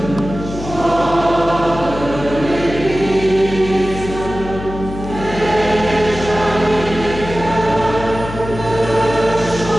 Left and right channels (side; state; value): left; noise; hum, 10 dB below the sound